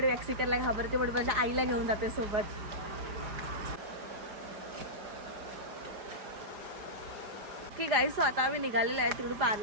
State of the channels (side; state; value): left; late; 4.9 ms